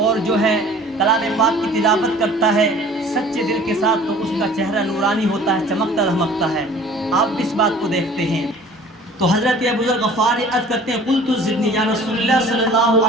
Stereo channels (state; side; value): normal; both; correlation 0.48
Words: اور جو ہے کلام پاک کی تلاوت کرتا ہے سچے دل کے ساتھ, تو اس کا چہرہ نورانی ہوتا ہے, چمکتا دھمکتا ہے. آپ بھی اس بات کو دیکھتے ہیں. تو حضرت ابو ذر غفاری عرض کرتے ہیں قلت زدنی یا رسول اللہ صلی اللہ